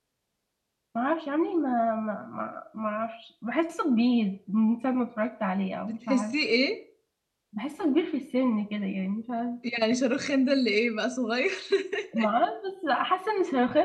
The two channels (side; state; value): both; identical; correlation 1.00